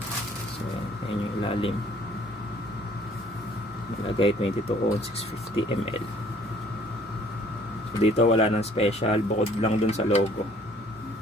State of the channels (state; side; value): normal; both; correlation 0.58